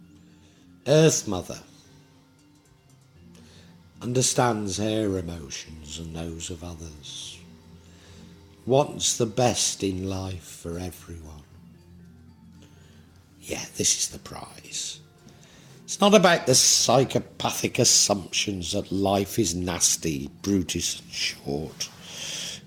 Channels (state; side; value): identical; both; correlation 1.00